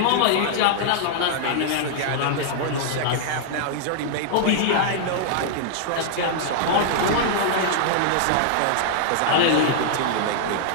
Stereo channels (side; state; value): both; different; correlation -0.01